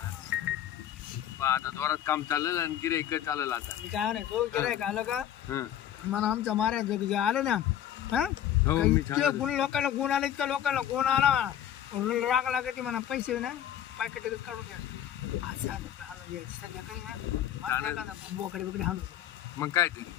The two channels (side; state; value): right; quieter; 10.8 dB